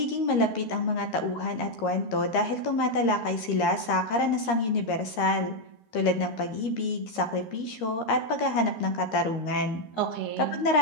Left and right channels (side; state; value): right; late; 13 ms